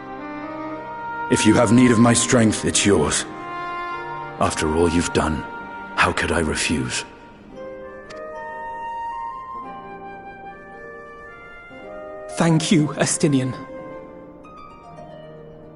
If you have need of my strength, it's yours. After all you've done, how could I refuse? Thank you, Estinian.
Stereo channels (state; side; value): identical; both; correlation 1.00